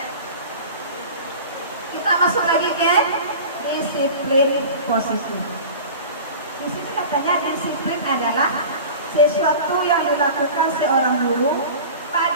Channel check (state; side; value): inverted; both; correlation -0.37